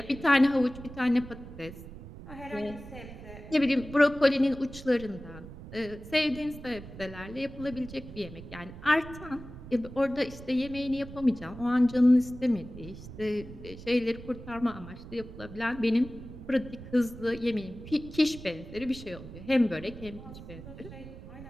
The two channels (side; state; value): right; noise; rumble, 14 dB below the sound